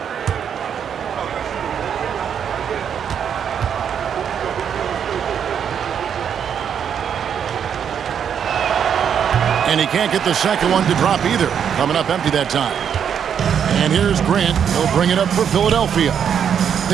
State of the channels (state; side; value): quieter; left; 8.1 dB